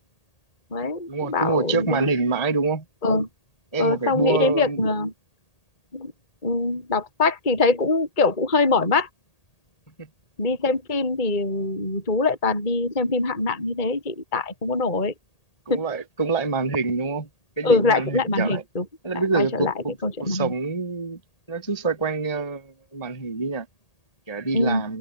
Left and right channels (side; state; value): right; late; 1.8 ms